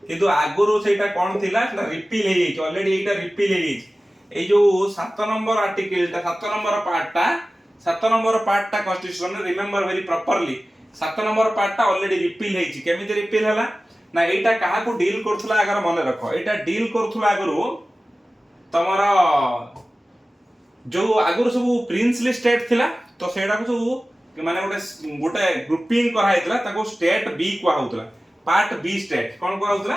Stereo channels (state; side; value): normal; both; correlation 0.96